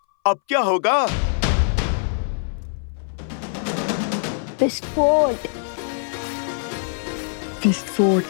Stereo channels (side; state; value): right; silent; 60 dB below the other